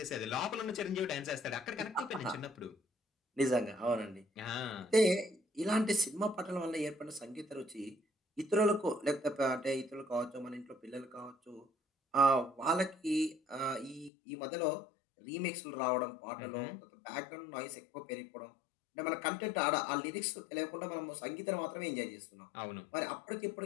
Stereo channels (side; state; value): right; drops out; at 14.1 s